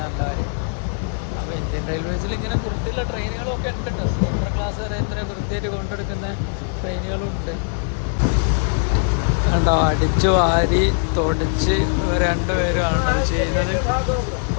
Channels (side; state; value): right; silent; 57 dB below the other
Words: നല്ല കാര്യം. അപ്പോൾ ഇന്ത്യൻ റെയിൽവേസിൽ ഇങ്ങനെ വൃത്തിയുള്ള ട്രെയിനുകളൊക്കെ ഉണ്ട് കേട്ടോ. സ്ലീപ്പർ ക്ലാസ് വരെ ഇത്ര വൃത്തിയായിട്ട് കൊണ്ടെടുക്കുന്ന ട്രെയിനുകളും ഉണ്ട് കണ്ടോ. അടിച്ചു വാരി തൊടിച്ച് 2 പേരുമാണ് അത് ചെയ്യുന്നത്.